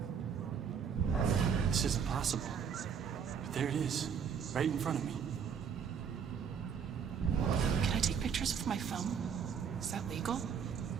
This isn't possible. But there it is, right in front of me. Can I take pictures with my phone? Is that legal?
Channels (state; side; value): quieter; left; 7.1 dB